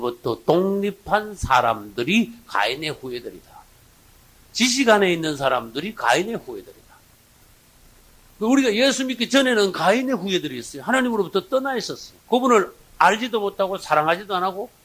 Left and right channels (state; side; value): identical; both; correlation 1.00